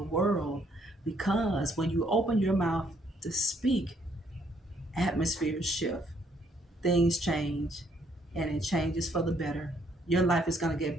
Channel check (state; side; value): normal; both; correlation 0.68